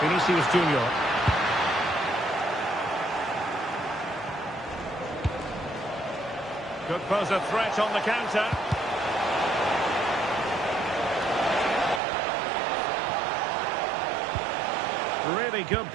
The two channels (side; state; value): left; drops out; at 12.0 s